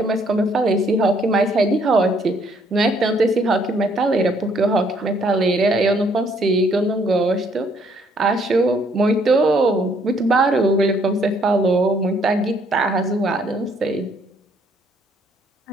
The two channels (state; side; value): normal; both; correlation 0.66